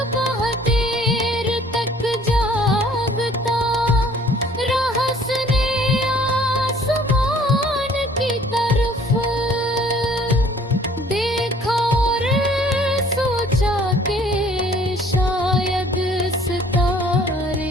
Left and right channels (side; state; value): both; normal; correlation 0.56